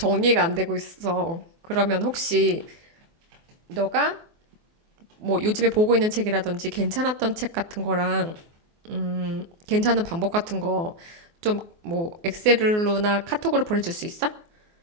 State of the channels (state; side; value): late; left; 24 ms